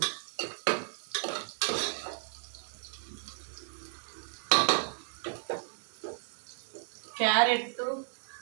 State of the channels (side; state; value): left; silent; digital silence